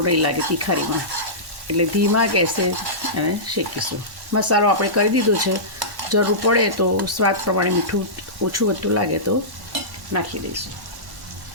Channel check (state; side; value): late; left; 1.1 ms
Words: નહીં લાગે તિખારીમાં. એટલે ધીમા ગેસે એને શેકીશું. મસાલો આપણે કરી દીધો છે. જરૂર પડે તો સ્વાદ પ્રમાણે મીઠું ઓછું વધતું લાગે તો નાખી દઈશું.